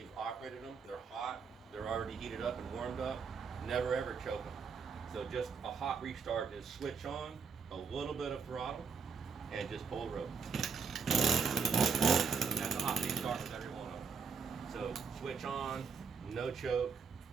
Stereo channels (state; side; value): quieter; left; 5.6 dB